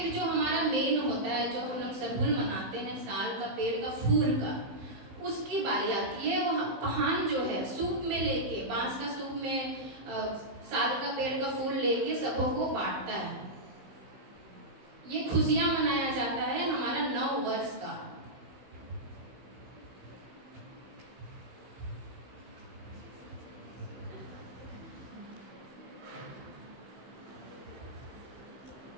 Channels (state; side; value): late; left; 15 ms